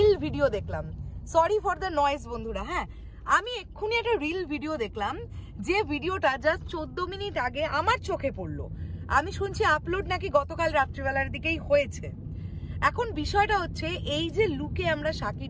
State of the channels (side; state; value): both; identical; correlation 1.00